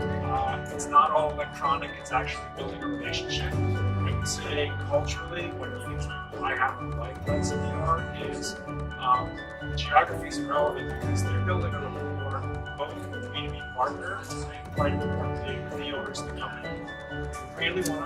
it's not all electronic, it's actually building a relationship. I would say culturally, one of the things I happen to like about CBR is geography is relevant because they're building a rapport both with B2B partners and quite importantly with the owners of the company. They really want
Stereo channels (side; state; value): both; identical; correlation 1.00